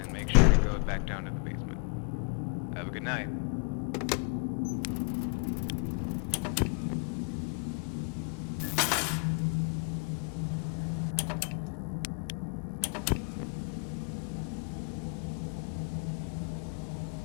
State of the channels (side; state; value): right; quieter; 37.4 dB